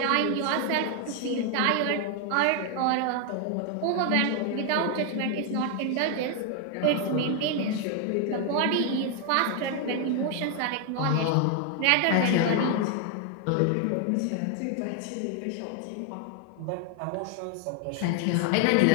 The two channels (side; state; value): both; different; correlation 0.00